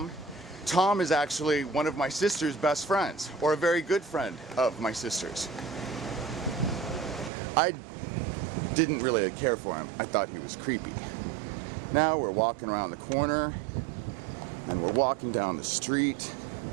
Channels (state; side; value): drops out; left; at 7.3 s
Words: Tom is actually one of my sister's best friends, or a very good friend of my sister's. I didn't really care for him. I thought he was creepy. Now we're walking around the corner, and we're walking down the street.